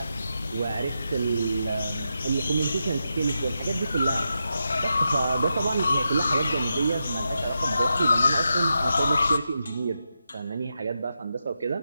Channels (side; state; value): both; inverted; correlation -0.87